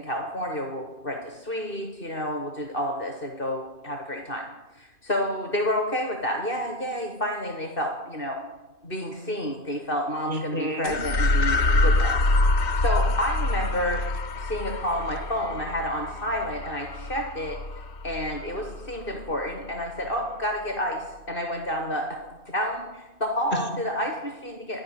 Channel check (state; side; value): late; right; 2.6 ms